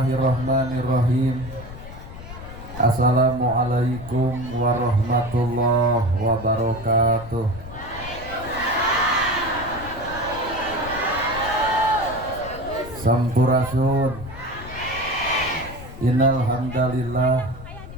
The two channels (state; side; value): noise; left; rumble, 13 dB below the sound